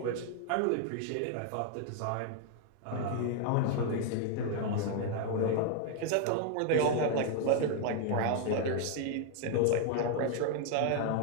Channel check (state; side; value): different; both; correlation 0.00